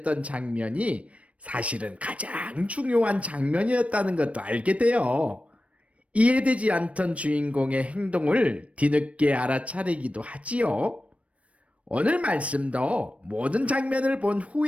장면이 사실은 가장 중요한 장면이었다는 것도 알게 돼요. 이해되지 않던 주인공의 행동을 뒤늦게 알아차리기도 하지요. 오늘 말씀도 모든 장면을 본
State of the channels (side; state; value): left; late; 0.064 ms